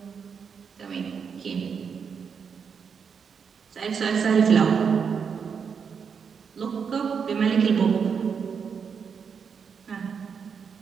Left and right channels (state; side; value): quieter; left; 6.4 dB